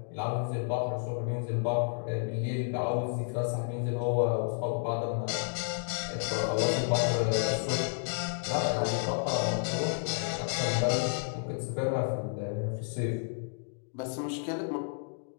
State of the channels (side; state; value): right; silent; digital silence